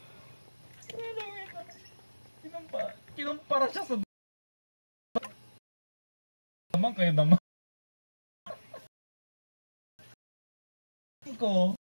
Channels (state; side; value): inverted; both; correlation -1.00